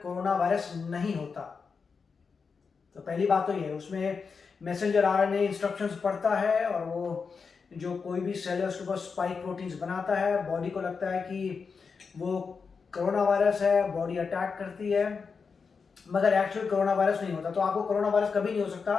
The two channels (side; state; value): right; quieter; 5.3 dB